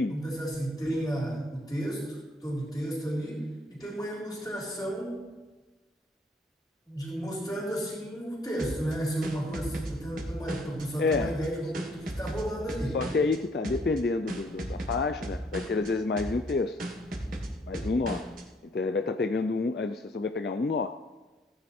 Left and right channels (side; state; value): both; normal; correlation 0.64